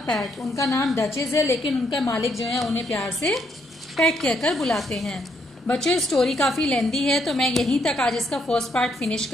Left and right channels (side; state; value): both; normal; correlation 0.74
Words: PAT. उनका नाम डचेज है, लेकिन उनका मालिक जो है उन्हें प्यार से पैट कहकर बुलाते हैं। बच्चों, स्टोरी काफी लेंदी है, तो मैं यहीं तक आज इसका फर्स्ट पार्ट फिनिश